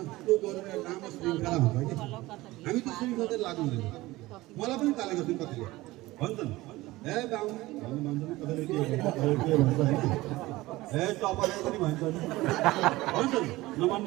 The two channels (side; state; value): left; quieter; 19.0 dB